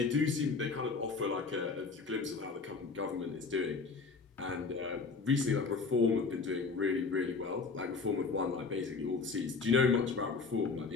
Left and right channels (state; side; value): quieter; right; 4.4 dB